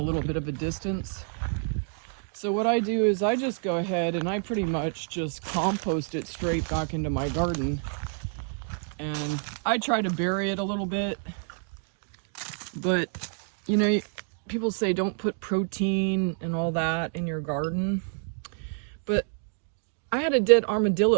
little bit of a distance. So what I do is I just go ahead and I pretty much just compost it straight back into my garden. And I try to bury it a little bit, but you know, people say don't put protein and all that in your garden. But I had a dead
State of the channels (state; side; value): silent; left; 59 dB below the other